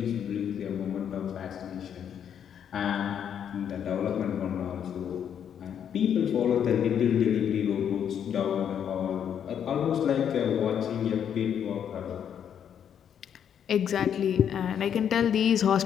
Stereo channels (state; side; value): quieter; right; 8.7 dB